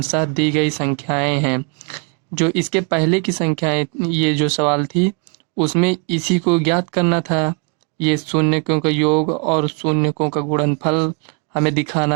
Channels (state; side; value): quieter; left; 35.6 dB